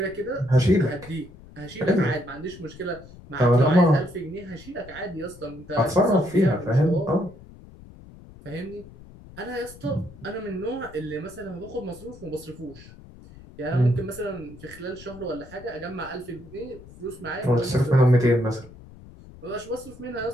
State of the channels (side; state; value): left; noise; rumble, 19 dB below the sound